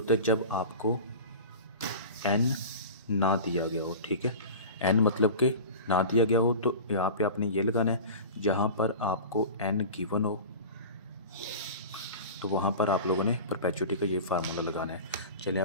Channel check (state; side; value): inverted; both; correlation -0.34